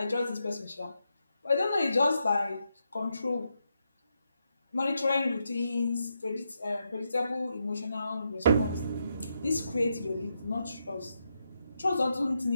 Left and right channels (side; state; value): both; inverted; correlation -0.83